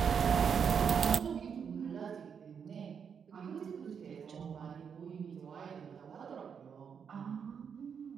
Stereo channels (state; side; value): quieter; left; 7.0 dB